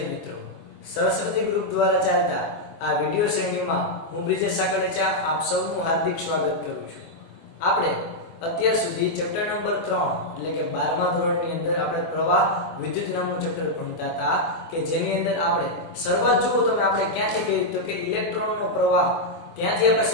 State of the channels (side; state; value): right; late; 24 ms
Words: મિત્રો, સરસ્વતી ગ્રુપ દ્વારા ચાલતા આ વિડિયો શ્રેણીમાં હું બ્રિજેશ સાકળેચા આપ સૌનું હાર્દિક સ્વાગત કરું છું. આપણે અત્યાર સુધી ચેપ્ટર નંબર 3 એટલે કે 12મા ધોરણની અંદર આપણે પ્રવાહ વિદ્યુત નામનું ચેપ્ટર ભણતા હતા કે જેની અંદર આપણે શરૂઆત જુઓ તમે આપણે ક્યાંથી કરી તો કે ઇલેક્ટ્રોનનો પ્રવાહ ત્યાંથી આપણે